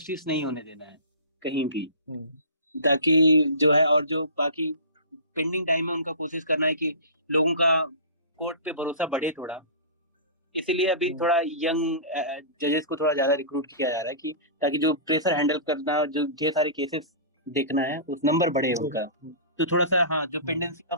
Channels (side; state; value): both; inverted; correlation -0.34